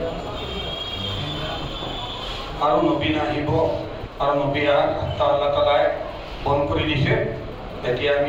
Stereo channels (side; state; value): both; identical; correlation 1.00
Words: আৰু নবী নাহিব আৰু নবীয়া আল্লাহ তাআলাই বন কৰি দিছে। এতিয়া